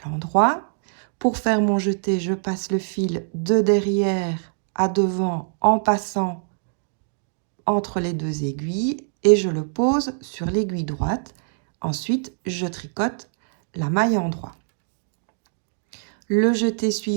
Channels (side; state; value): left; silent; digital silence